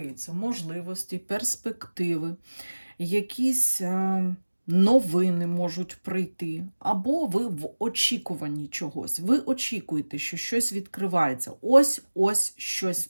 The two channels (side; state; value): both; inverted; correlation -1.00